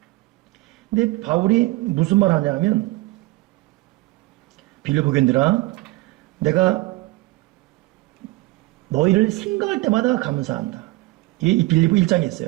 근데 바울이 무슨 말 하냐면 빌립보 교인들아, 내가 너희를 생각할 때마다 감사한다. 이 빌립보 1장에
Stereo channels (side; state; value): left; quieter; 20.5 dB